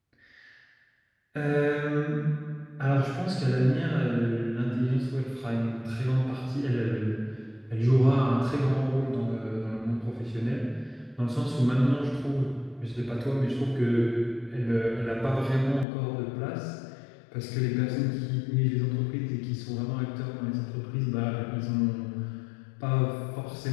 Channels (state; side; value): drops out; right; at 15.9 s